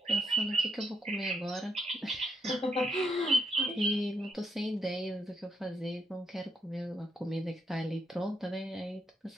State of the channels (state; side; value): normal; both; correlation 0.79